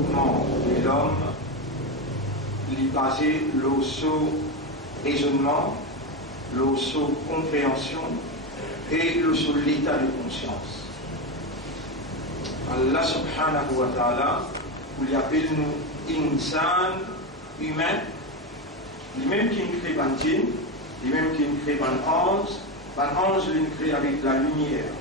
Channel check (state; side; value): normal; both; correlation 0.14